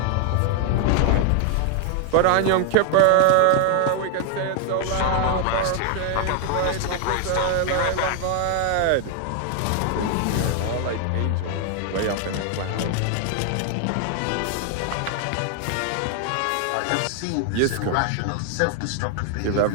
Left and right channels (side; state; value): both; different; correlation 0.00